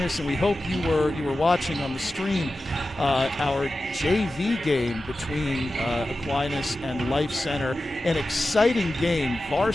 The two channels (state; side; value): normal; both; correlation 0.94